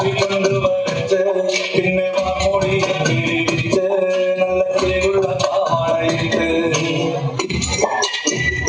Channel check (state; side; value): identical; both; correlation 1.00